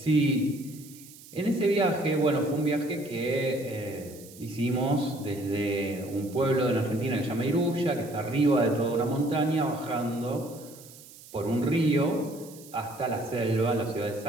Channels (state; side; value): noise; right; hiss, 20 dB below the sound